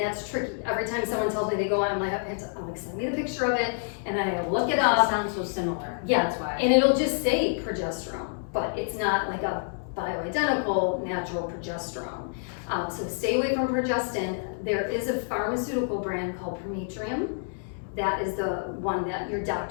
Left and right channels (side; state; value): right; silent; digital silence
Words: tricky. Every time someone tells me they go on, I'm like, send me the picture of it, and then I gotta look it It up. sounds so similar. Yeah, That's why. and it'll just say progesterone, but it's not like a bioidentical natural progesterone. So stay away from progestin. There is a pharmaceutical brand called Prometrium. That is the one that your